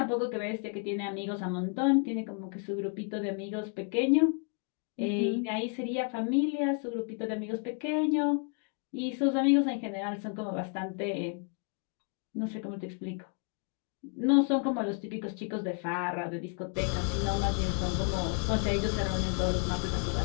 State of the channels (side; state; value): right; quieter; 39.1 dB